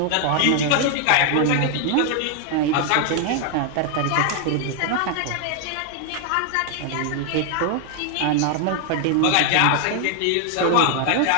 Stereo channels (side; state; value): both; different; correlation 0.00